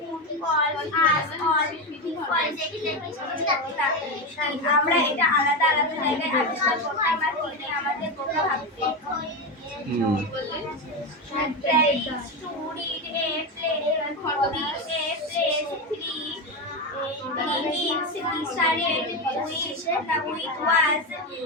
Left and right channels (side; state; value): both; normal; correlation 0.15